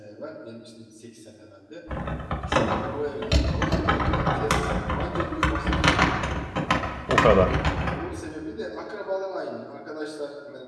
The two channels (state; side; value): identical; both; correlation 1.00